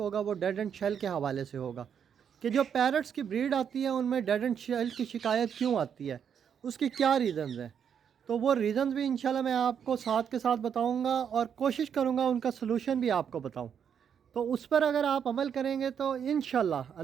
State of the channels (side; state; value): left; quieter; 7.9 dB